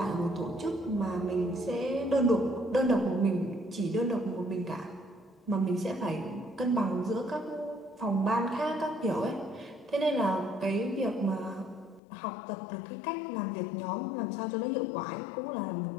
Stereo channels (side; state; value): right; drops out; at 12.0 s